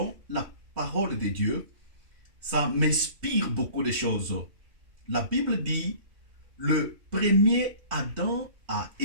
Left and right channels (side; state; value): left; late; 3.2 ms